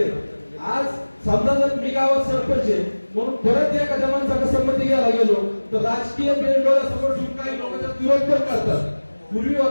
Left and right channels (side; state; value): both; inverted; correlation -1.00